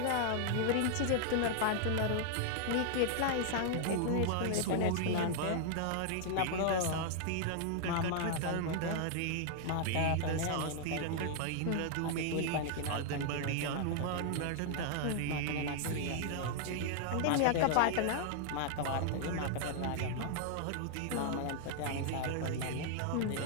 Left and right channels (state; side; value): different; both; correlation 0.00